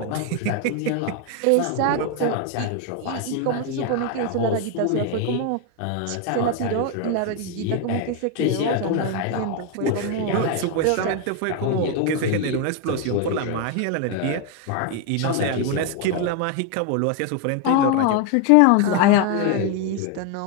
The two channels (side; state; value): both; different; correlation 0.01